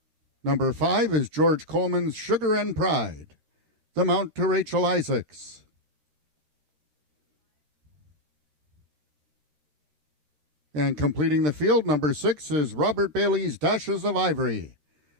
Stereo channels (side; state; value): left; late; 13 ms